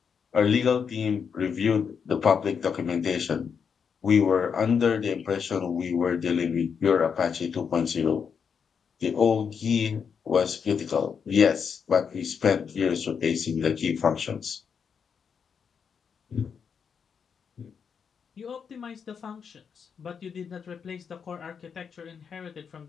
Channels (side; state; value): right; quieter; 6.6 dB